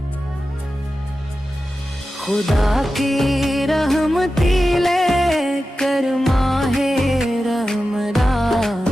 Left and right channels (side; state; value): both; normal; correlation 0.93